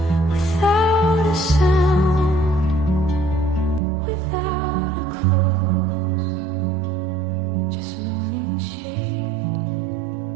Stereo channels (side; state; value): left; drops out; at 3.8 s